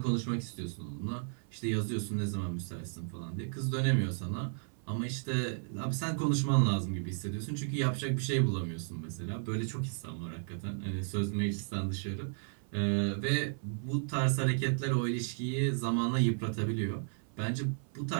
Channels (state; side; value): silent; left; 55 dB below the other